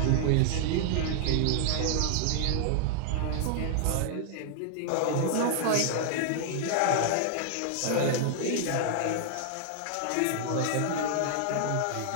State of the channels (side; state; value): both; different; correlation -0.01